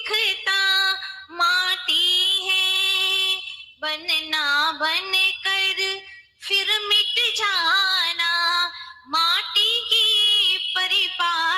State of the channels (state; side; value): identical; both; correlation 1.00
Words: माटी है, बनना बन कर फिर मिट जाना, माटी की